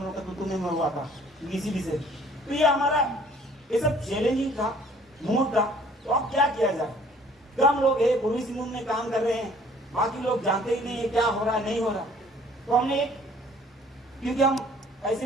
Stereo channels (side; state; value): both; normal; correlation 0.55